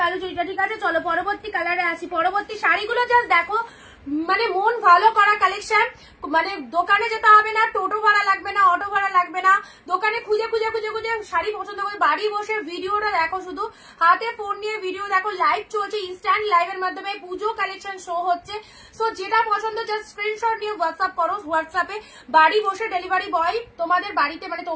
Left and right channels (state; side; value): identical; both; correlation 1.00